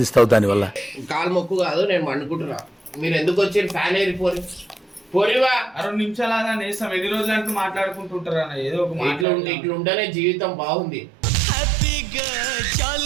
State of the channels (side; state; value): left; drops out; at 9.2 s